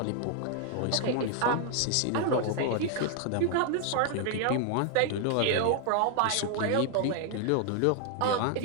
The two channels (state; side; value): different; both; correlation 0.00